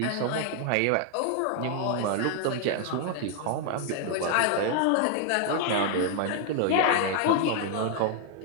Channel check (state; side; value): different; both; correlation 0.00